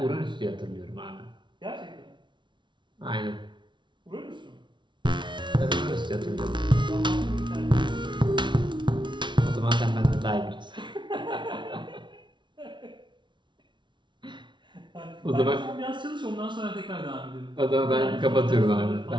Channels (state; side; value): late; left; 0.23 ms